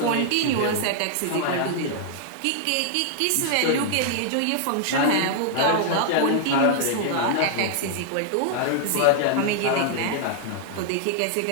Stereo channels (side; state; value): both; different; correlation -0.01